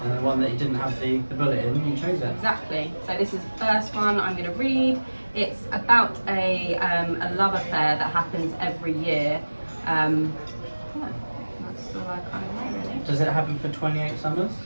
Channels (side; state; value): both; inverted; correlation -1.00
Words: and the one that you didn't have the bullet in, you chose it. Exactly. So this is the first one I'm going to read. It's about a love affair that happens every year. Yeah, that's all I kind of know really. Does it happen for 28 summers?